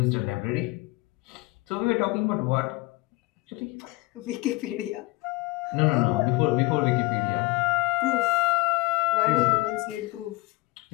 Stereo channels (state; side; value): quieter; right; 22.5 dB